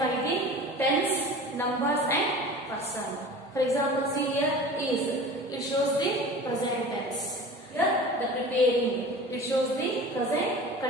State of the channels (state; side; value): normal; both; correlation 0.38